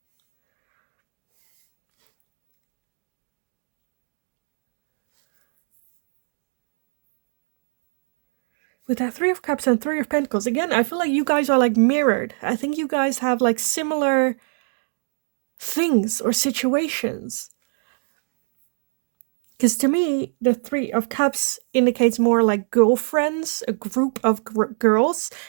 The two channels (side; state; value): left; silent; digital silence